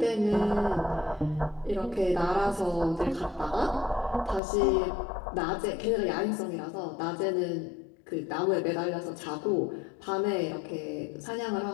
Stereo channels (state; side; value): drops out; right; at 4.4 s